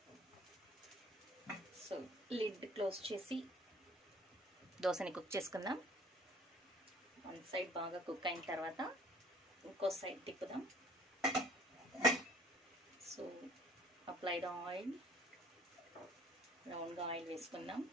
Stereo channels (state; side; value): normal; both; correlation 0.54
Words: So lid close చేసి దోసని cook చేసుకుందాం. One side బాగా cook అయిన తర్వాత ఇంకో సైడ్ తిప్పుదాం. సో అప్లైడ్ ఆయిల్, రౌండ్గా ఆయిల్ వేసుకుందాం.